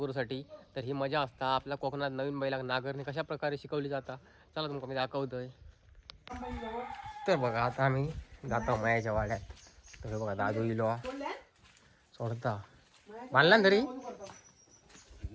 तर ही मजा असता आपल्या कोकणात नवीन बैला नांगरणी कशा प्रकारे शिकवली जाता, चला तुमका मी दाखवतोय. तर बघा आता आम्ही जातो मयाच्या वाड्यात. तर बघा दादू इलो सोडता बांधला ना तरी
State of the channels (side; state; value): both; identical; correlation 1.00